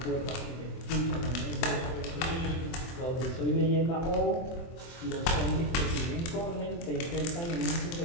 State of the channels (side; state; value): right; late; 24 ms